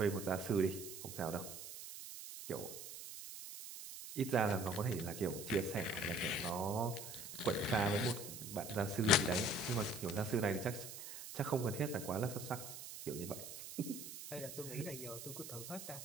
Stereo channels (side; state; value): right; noise; hiss, 10 dB below the sound